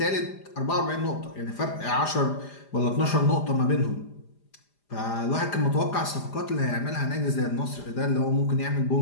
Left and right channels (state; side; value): late; right; 5.0 ms